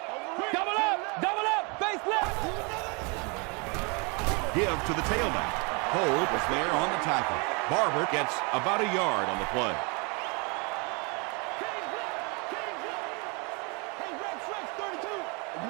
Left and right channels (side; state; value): left; quieter; 31.9 dB